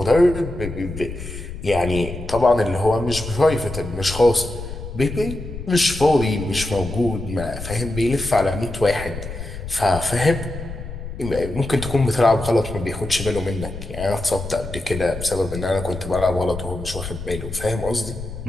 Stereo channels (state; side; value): noise; left; rumble, 10 dB below the sound